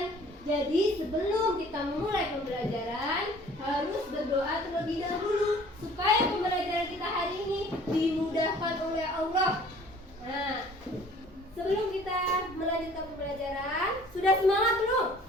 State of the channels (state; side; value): normal; both; correlation 0.52